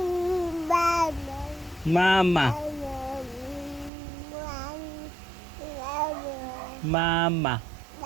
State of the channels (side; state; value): left; drops out; at 3.9 s